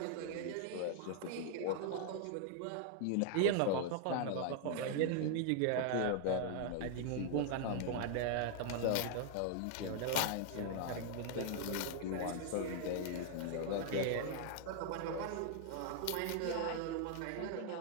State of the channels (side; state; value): both; different; correlation 0.00